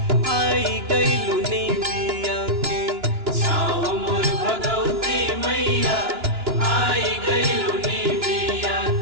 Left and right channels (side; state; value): left; late; 2.9 ms